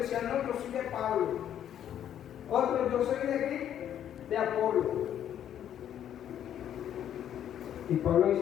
no, yo soy de Pablo. Otros, yo soy de Cristo, de Apolo. Y Pablo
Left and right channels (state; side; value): quieter; right; 10.2 dB